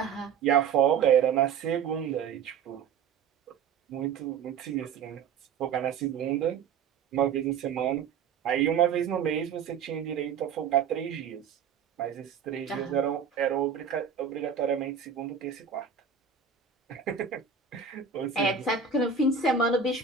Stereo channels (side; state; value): left; quieter; 6.7 dB